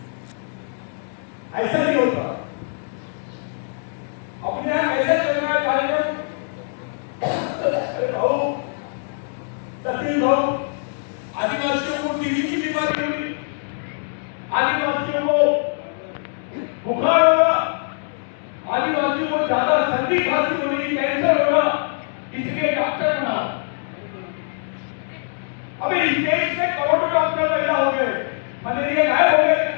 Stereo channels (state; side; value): silent; right; digital silence